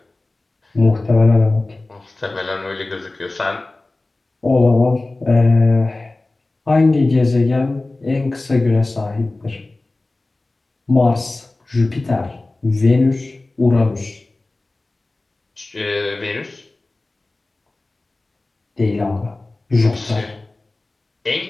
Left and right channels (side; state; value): right; quieter; 3.0 dB